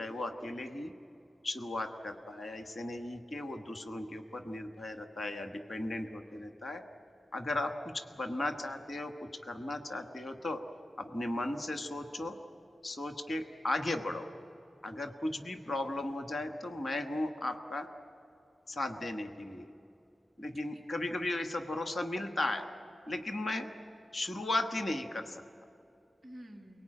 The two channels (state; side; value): normal; both; correlation 0.91